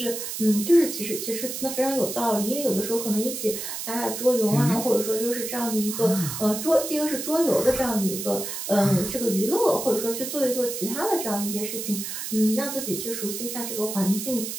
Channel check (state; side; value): noise; right; hiss, 6 dB below the sound